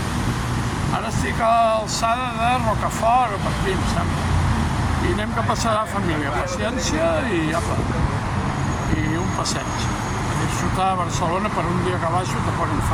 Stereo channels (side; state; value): both; identical; correlation 1.00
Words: ara estic a l'alçada de Rocafort o per aquí, em sembla. I anem que passarà a família. Paciència i apa, i un passeig. A disfrutar a Barcelona per un dia que baixo tampoc em